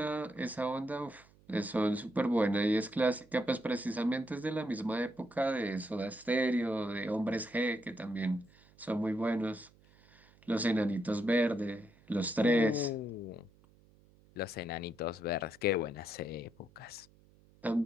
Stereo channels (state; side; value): noise; right; hum, 28 dB below the sound